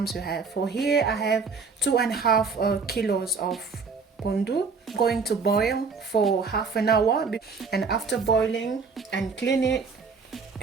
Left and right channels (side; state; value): left; quieter; 5.0 dB